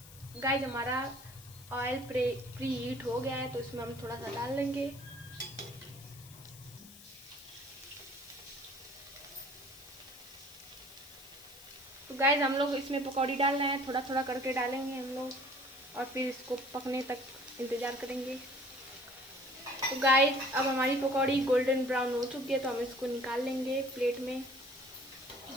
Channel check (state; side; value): noise; left; hiss, 19 dB below the sound